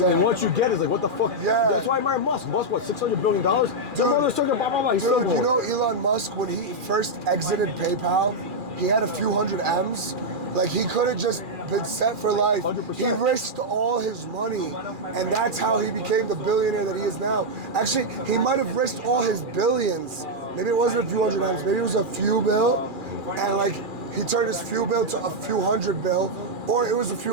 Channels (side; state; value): left; late; 2.4 ms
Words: And once you get it, it's like, what the fuck? Yeah. That's why I admire Musk. Musk, what, $600 billion? Dude, you know Elon Musk, when he first exited PayPal, he had a few hundred M's. Like, he could have just been set for life. 100%. He risked all his money, and that's how he became the billionaire that he is now. Actually, he might have risked all his billions. Maybe it wasn't a few hundred M's, maybe it was a few bill, and like, he turned his few bill to a few hundred bill, or it was a